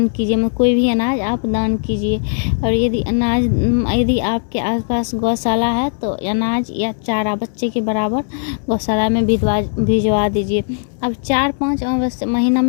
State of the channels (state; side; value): silent; right; 68 dB below the other